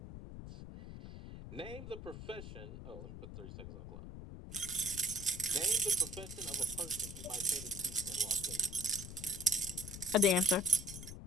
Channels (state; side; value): noise; left; rumble, 11 dB below the sound